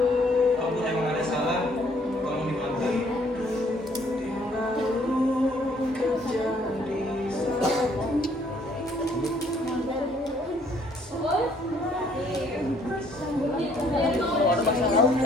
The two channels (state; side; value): normal; both; correlation 0.64